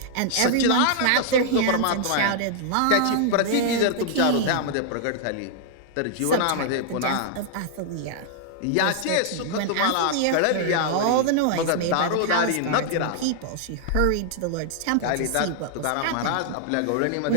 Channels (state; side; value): different; both; correlation -0.01